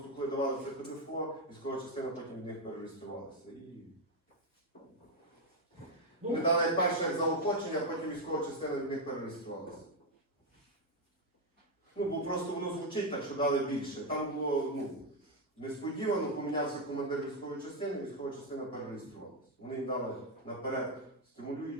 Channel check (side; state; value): both; normal; correlation 0.04